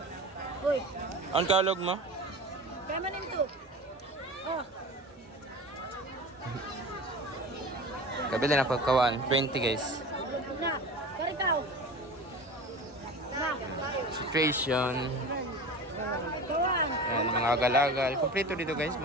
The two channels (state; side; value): normal; both; correlation 0.34